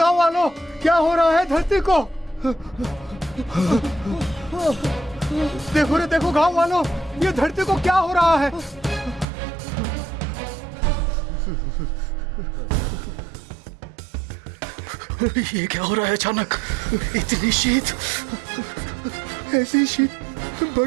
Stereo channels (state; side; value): drops out; left; at 9.2 s